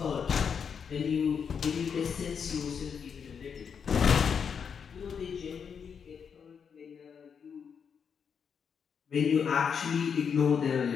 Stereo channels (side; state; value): right; quieter; 6.8 dB